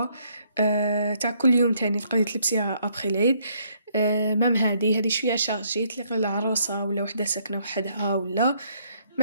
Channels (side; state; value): both; inverted; correlation -0.69